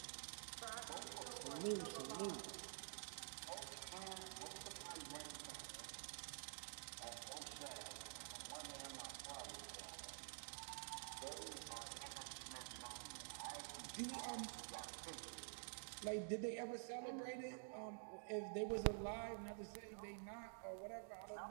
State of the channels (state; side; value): silent; left; digital silence